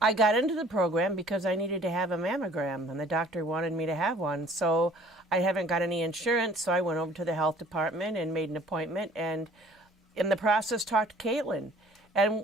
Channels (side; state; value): both; normal; correlation 0.53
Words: I got into the program because I needed to have a mammogram, and the doctor wanted me to have one. So I haven't got any insurance, so I went over to the health department and made an appointment, and in the process talked to Caitlin.